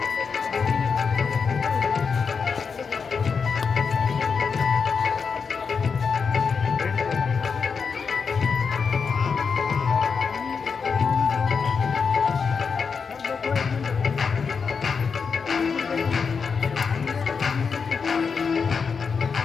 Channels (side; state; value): right; quieter; 5.6 dB